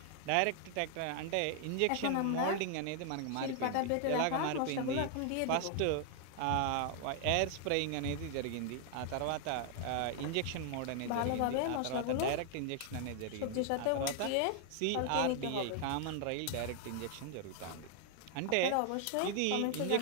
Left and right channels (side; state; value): both; different; correlation 0.00